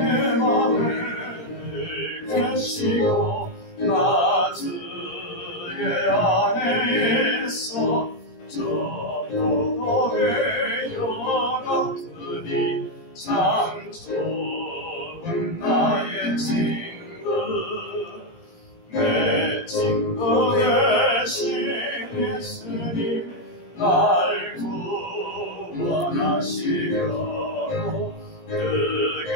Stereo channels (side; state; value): right; late; 17 ms